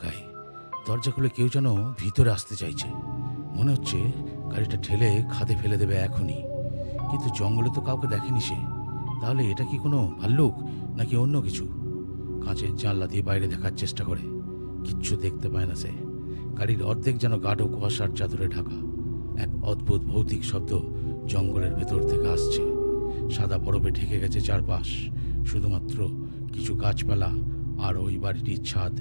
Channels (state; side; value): inverted; both; correlation -1.00